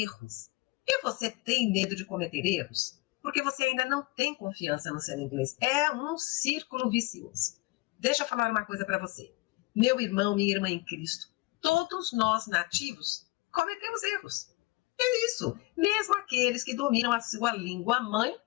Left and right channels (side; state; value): right; quieter; 22.7 dB